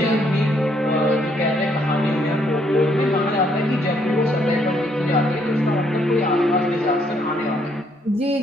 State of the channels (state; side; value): normal; both; correlation 0.70